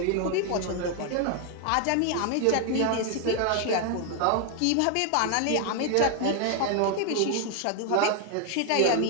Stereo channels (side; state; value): both; different; correlation 0.01